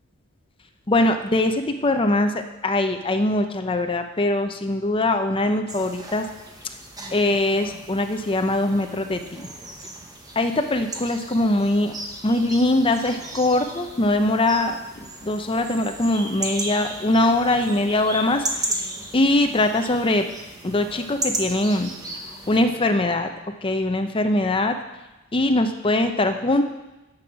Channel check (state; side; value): normal; both; correlation 0.47